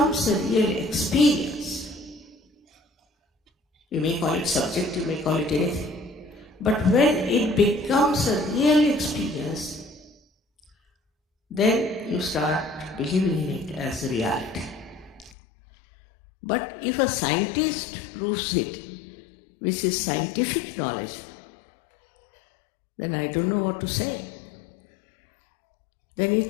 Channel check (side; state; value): right; drops out; at 15.3 s